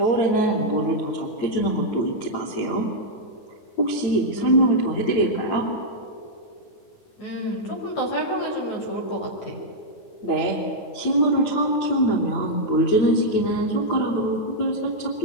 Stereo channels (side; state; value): right; late; 9.0 ms